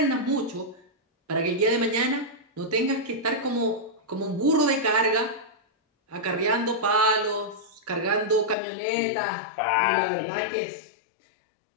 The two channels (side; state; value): right; drops out; at 8.6 s